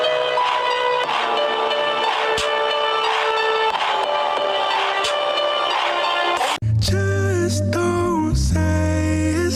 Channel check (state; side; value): identical; both; correlation 1.00